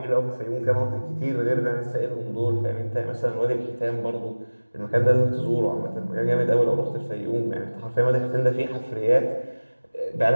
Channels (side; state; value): both; inverted; correlation -1.00